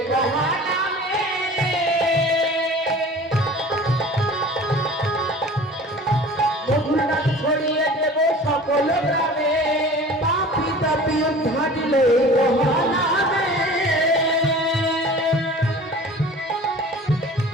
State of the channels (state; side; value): normal; both; correlation 0.42